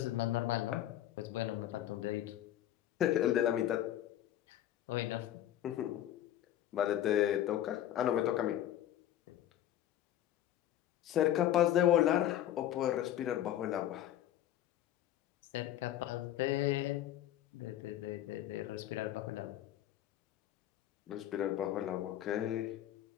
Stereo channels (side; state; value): right; quieter; 12.1 dB